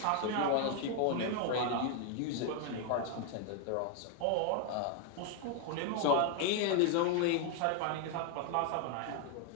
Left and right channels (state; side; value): different; both; correlation 0.00